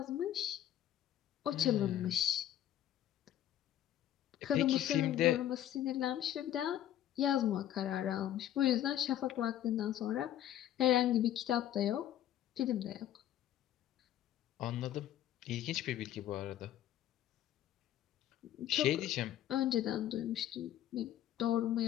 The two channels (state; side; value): quieter; right; 11.8 dB